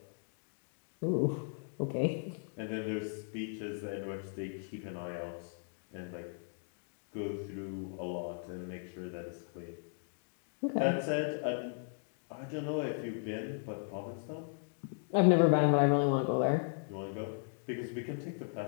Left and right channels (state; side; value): silent; right; digital silence